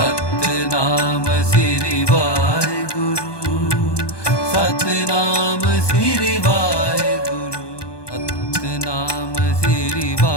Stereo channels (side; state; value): right; late; 1.2 ms